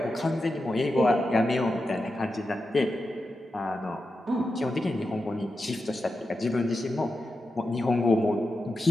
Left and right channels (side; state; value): both; normal; correlation 0.89